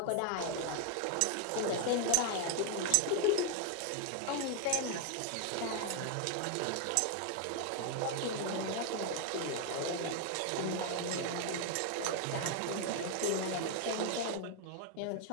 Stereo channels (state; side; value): different; both; correlation 0.00